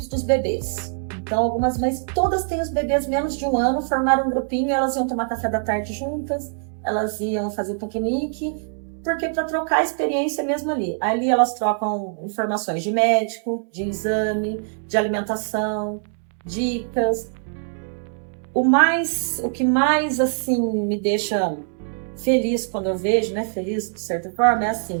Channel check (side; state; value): left; silent; digital silence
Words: dos bebês. Então, algumas mães, todas têm os bebês menos de 1 ano, formaram um grupinho, elas iam tomar café da tarde juntas, elas iam fazer piquenique, porque para trocar a experiência mesmo ali. Ali elas trocam informações de médico, de exame, de alimentação, dicas. O que mais, assim, me deixa feliz quando eu vejo, né, feliz de certa forma, é